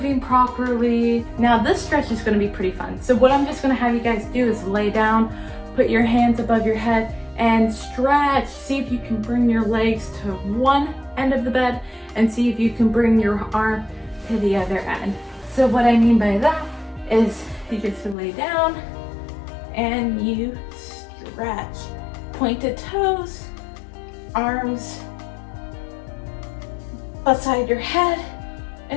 properly. Now this stretch is going to be pretty fun. So what I'm just going to have you guys do is lay down, put your hands above your head and stretch. See if you can bring your legs to one end of the bed and see if you can bring your arm to the other end. So what I mean by that is you just lay down and you stretch. Pointed toes, arms beside your head,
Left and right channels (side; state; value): right; drops out; at 18.2 s